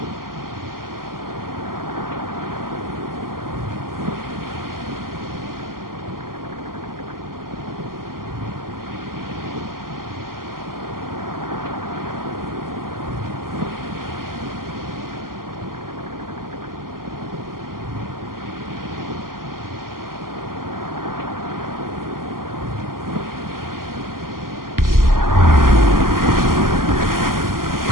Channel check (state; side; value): late; left; 0.92 ms